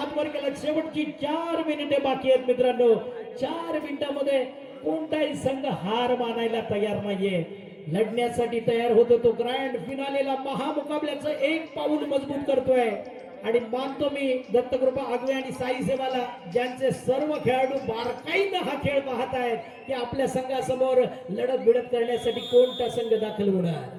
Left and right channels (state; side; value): identical; both; correlation 1.00